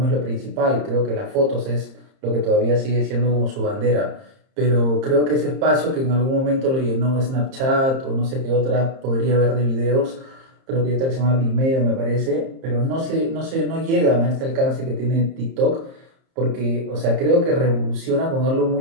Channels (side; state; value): left; late; 30 ms